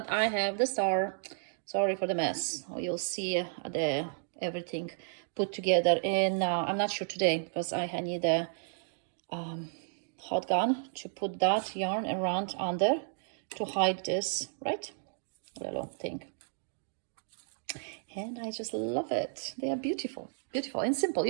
I have the star. Sorry for the mess. You'll see the everything put together in I'm not sure today because I need a hot gun to put that yarn around under to hide this, right, little thing. And I just love it. They are beautiful, beautiful and simple.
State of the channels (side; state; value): left; silent; digital silence